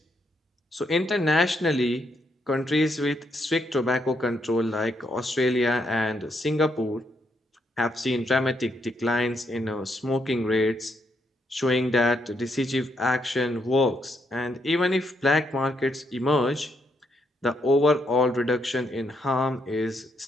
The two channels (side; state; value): both; normal; correlation 0.77